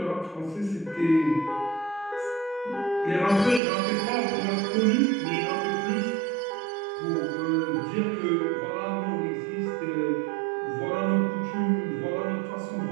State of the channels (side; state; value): left; drops out; at 3.6 s